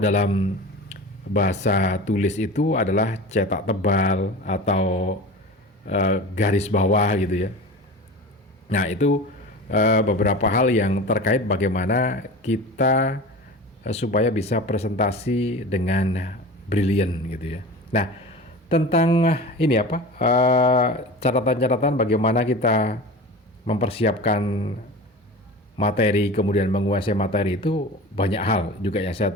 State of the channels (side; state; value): both; normal; correlation 0.34